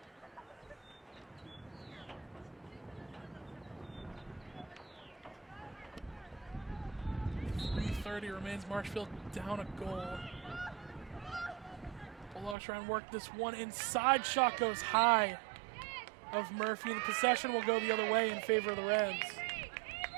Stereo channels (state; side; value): drops out; left; at 12.6 s